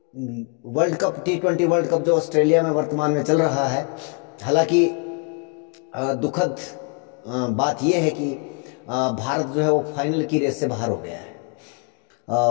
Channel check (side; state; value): right; quieter; 36.5 dB